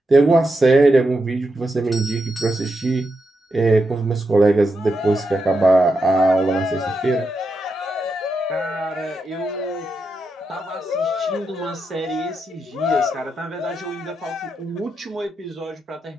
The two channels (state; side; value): normal; both; correlation 0.85